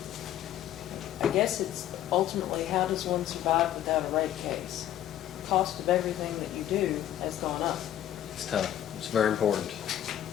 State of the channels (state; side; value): quieter; right; 11.8 dB